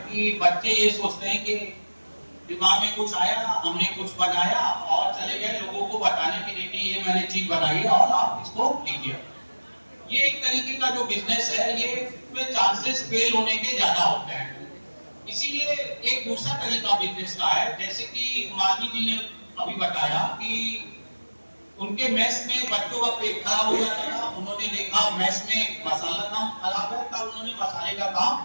कि बच्चे ये सोचते हैं कि दिमाग में कुछ आया, हमने कुछ बनाया और चले गए लोगों को बताने के लिए कि ये मैंने चीज बनाई है और आप इसको लीजिए। ये एक तरीके का जो बिजनेस है ये में चांसेस फेल होने के ज्यादा होते हैं। इसीलिए एक दूसरा तरीका बिजनेस का है, जैसे कि मालवी जी ने अभी बताया कि उनके मेस में बच्चों का पेट खराब हो जाता था, उन्होंने देखा मेस में मसाला काम खराब है, तब उन्होंने मसाले का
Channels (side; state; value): both; inverted; correlation -1.00